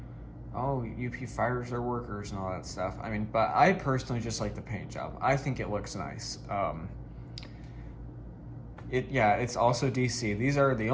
UP fires their workers and all that stuff. But I personally just like the paint job. I think it looks nice. It's also DC. These are the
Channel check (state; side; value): identical; both; correlation 1.00